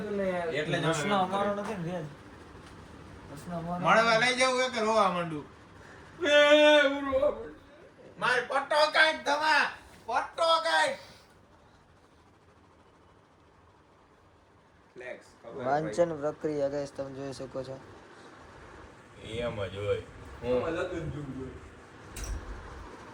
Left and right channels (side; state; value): both; identical; correlation 1.00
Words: ને યાર એટલે જ પ્રશ્ન અમારો નથી ને રેજ પ્રશ્ન અમારો મળવા લઈ જવું કે રોવા માંડું એ ઉરવા માર પટ્ટો કાઢ ધમા પટ્ટો કાઢ ફ્લેક્સ વાંચન પ્રક્રિયા ગાઈસ તમે જોઈ શકો છો એમ જ હોય હું લગન જોઉં